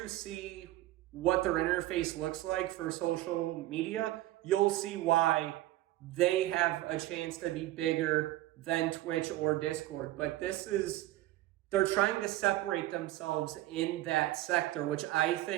see what their interface looks like for social media, you'll see why they have a chance to be bigger than Twitch or Discord. But they're trying to separate themselves in that sector, which I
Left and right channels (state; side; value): quieter; left; 16.0 dB